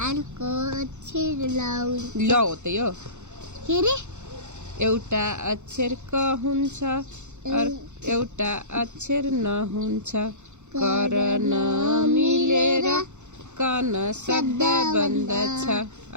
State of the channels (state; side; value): late; left; 0.83 ms